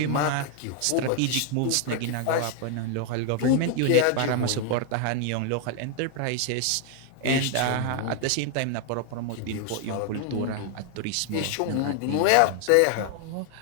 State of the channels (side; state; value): both; different; correlation 0.00